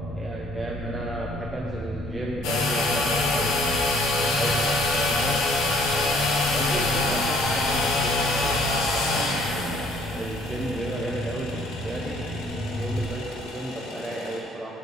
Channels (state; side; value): normal; both; correlation 0.60